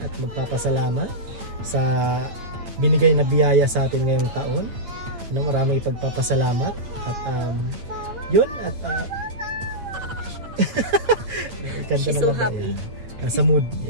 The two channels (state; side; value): late; left; 8.6 ms